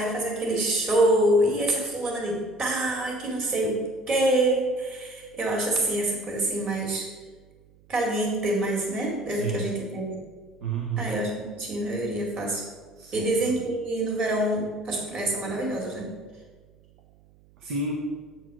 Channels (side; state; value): right; noise; hum, 28 dB below the sound